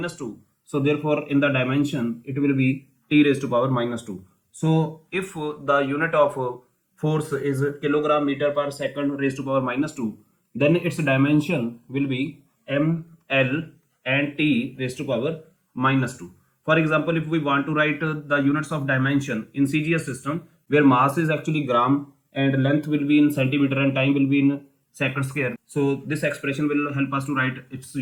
2, so therefore in the dimension it will be t raised to power minus 2. So if the unit of force is kilogram meter per second raised to power minus 2, then its dimension will be m, l and t raised to power minus 2. For example, if we want to write the units of dimension in CGS system, where mass is actually gram and length will be in centimeter and time will be in second square. So this expression will help us to write its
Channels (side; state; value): both; identical; correlation 1.00